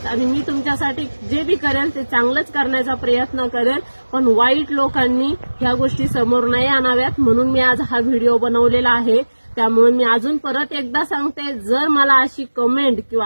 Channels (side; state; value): both; inverted; correlation -1.00